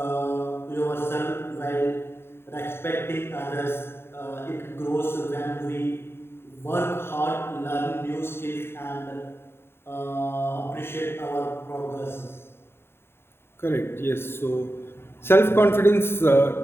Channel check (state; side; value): late; right; 0.11 ms